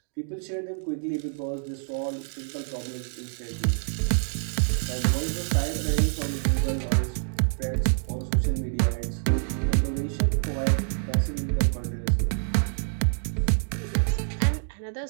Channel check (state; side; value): silent; left; digital silence